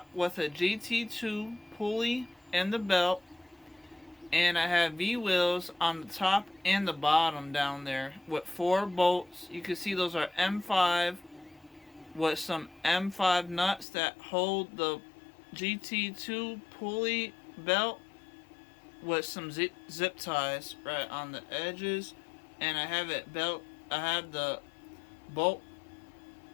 with a GT2 pulley and the belt, and I have V-wheels on the top and the bottom down there with 4 bolts. You can see those are M5 with some M5 nuts that hold the GT2 pulley belt with some zip ties right on the edges, and I have the bolt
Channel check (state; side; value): drops out; right; at 13.9 s